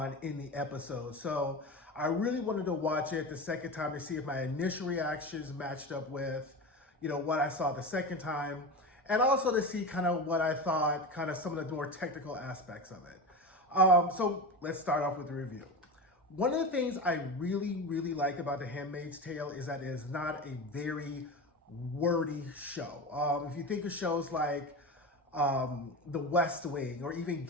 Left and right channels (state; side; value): normal; both; correlation 0.25